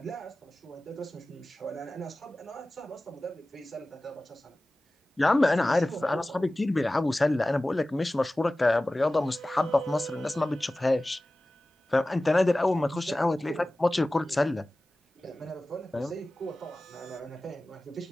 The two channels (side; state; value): both; normal; correlation 0.97